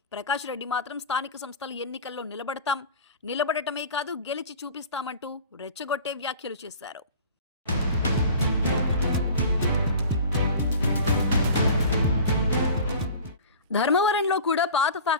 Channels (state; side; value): inverted; both; correlation -0.39